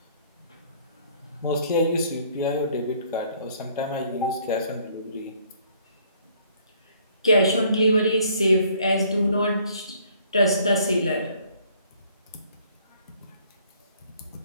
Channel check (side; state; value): both; inverted; correlation -0.61